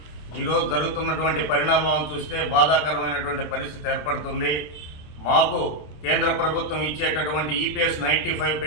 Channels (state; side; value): late; right; 26 ms